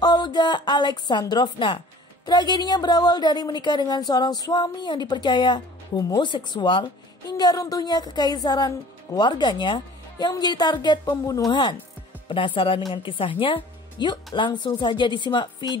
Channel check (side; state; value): both; normal; correlation 0.48